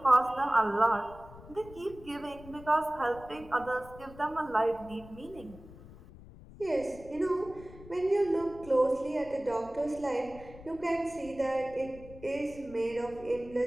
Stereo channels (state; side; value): noise; left; rumble, 18 dB below the sound